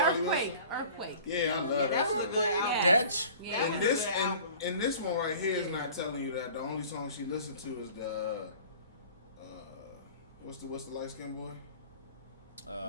Wilson. Earthquake. Yeah, I love that. was a good album. That. And this one right here is not telling you that. The only song she listened to is the what's the light skinned boy?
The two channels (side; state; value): both; inverted; correlation -0.45